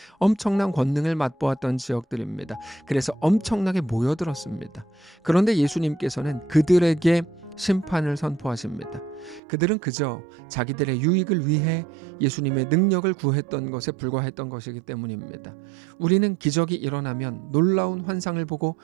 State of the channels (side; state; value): left; drops out; at 9.4 s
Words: 엄청난 권능을 맛보았던 지역들입니다. 그래서 엄청나게 모여들었습니다. 그런데 예수님께서는 그들에게 심판을 선포하십니다. 그들은 그저 자기들의 유익을 위해 예수님의 능력을 구했던 것에 불과했던 것이기 때문입니다. 우리는 기적이 일어나면, 놀라운 환상을 보고